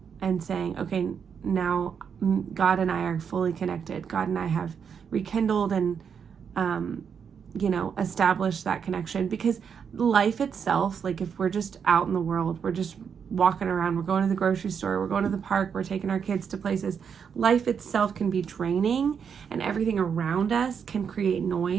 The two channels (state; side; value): quieter; left; 7.0 dB